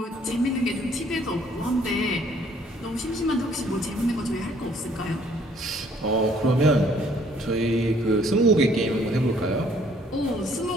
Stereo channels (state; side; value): normal; both; correlation 0.62